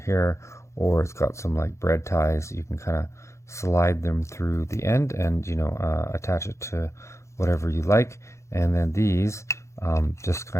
here, or it's got some like bread ties. You can kind of slide them through the end and attach it to whatever you like. And then these just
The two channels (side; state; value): right; late; 0.14 ms